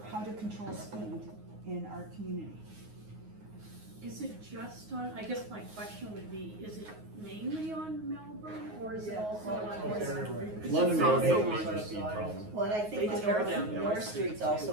how to control speed in our community. Is it just on, I guess my question would be, is it mainly on Melbourne, or is it also on? London also Road on is a speed problem. Well, and I think They the tear down North Street's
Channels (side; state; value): left; late; 9.5 ms